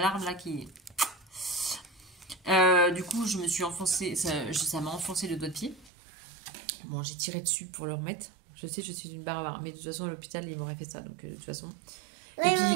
là qui... du coup, je me suis enfoncé, ça m'a enfoncé le doigt de pied. Bon, j'ai tiré dessus pour le remettre. Je sais, je suis une barbare, mais de toute façon, à l'hôpital, ils m'auraient fait ça, donc de toute façon... Oui, Et puis...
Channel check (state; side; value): drops out; left; at 5.9 s